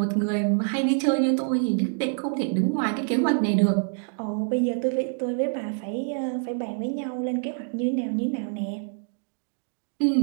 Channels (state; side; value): silent; left; 60 dB below the other